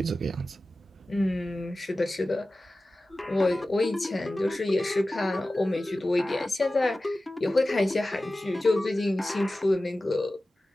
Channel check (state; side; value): normal; both; correlation 0.96